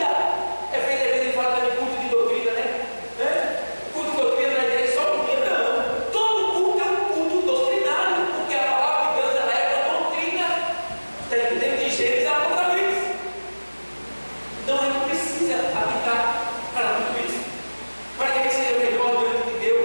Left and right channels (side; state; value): both; inverted; correlation -1.00